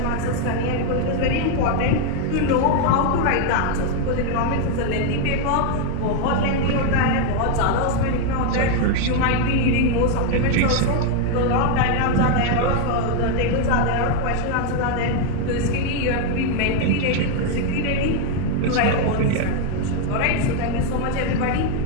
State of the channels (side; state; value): both; different; correlation 0.01